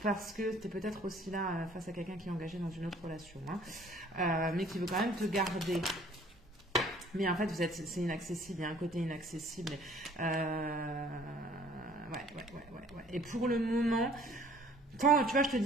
Parce que tu es peut-être aussi là face à quelqu'un qui est engagé dans une autre relation, hein, mais qui veut quand même te garder. Mais en fait, c'est inaccessible, il y a un côté inaccessible. Ouais. Et pour le moment, quand, tu vois, je te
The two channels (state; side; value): normal; both; correlation 0.55